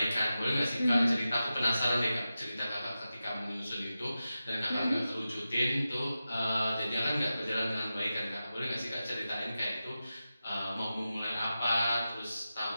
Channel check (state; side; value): inverted; both; correlation -0.92